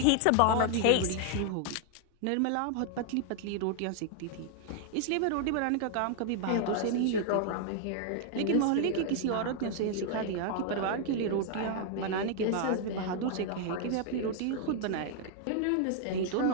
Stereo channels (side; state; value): both; different; correlation 0.00